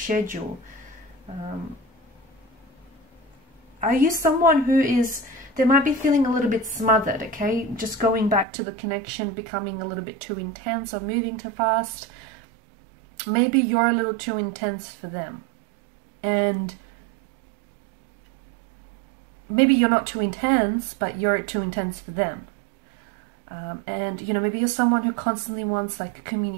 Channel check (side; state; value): left; drops out; at 8.5 s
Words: Are you someone who is, they might be feeling a little bit smothered, okay? Just going back to the connection becoming a little bit too intense or moving too fast. Maybe you're a little too intense for them. And maybe you're not too intense, but you're too intense for them. And, you know, maybe you're someone who constantly wants like